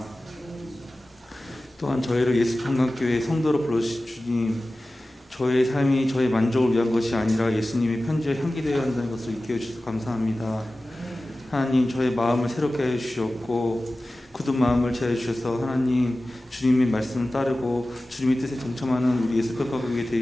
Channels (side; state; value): both; normal; correlation 0.96